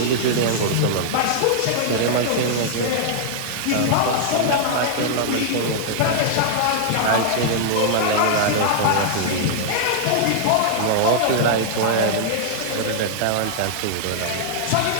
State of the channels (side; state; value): both; different; correlation -0.01